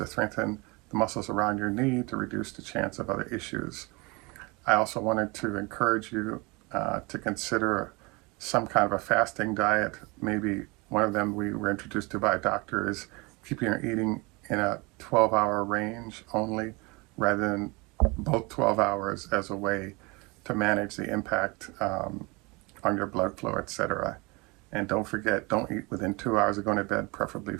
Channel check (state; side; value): quieter; left; 26.6 dB